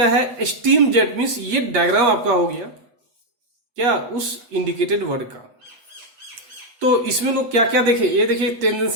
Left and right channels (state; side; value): late; left; 8.4 ms